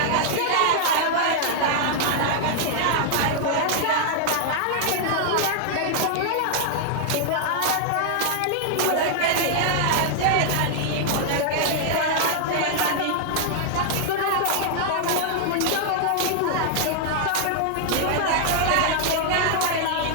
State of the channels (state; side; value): different; both; correlation -0.01